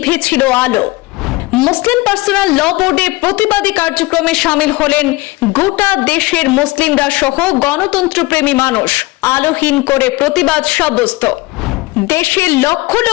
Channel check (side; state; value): right; quieter; 21.3 dB